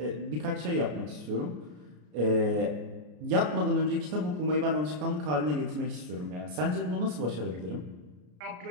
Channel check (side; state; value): left; late; 33 ms